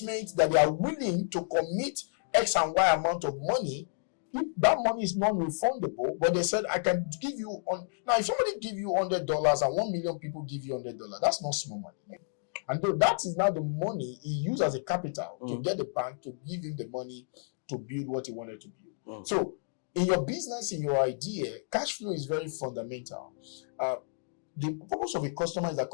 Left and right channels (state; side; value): silent; right; digital silence